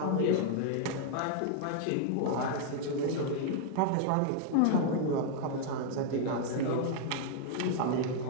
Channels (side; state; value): both; different; correlation -0.01